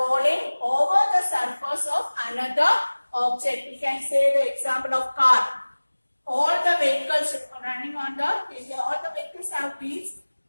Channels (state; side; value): inverted; both; correlation -1.00